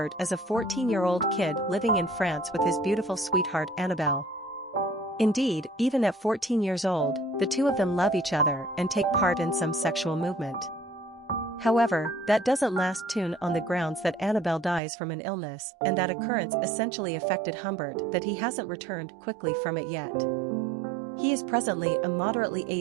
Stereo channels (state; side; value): drops out; left; at 14.8 s